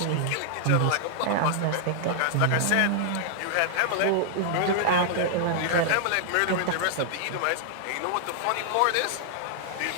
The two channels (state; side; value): different; both; correlation -0.01